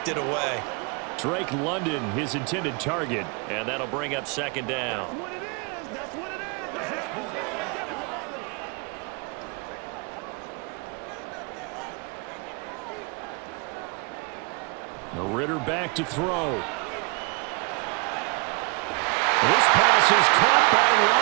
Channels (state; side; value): quieter; left; 31.9 dB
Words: it away. Drake London, his intended target, and that'll bring up second down. Ritter back to throw. This pass is caught by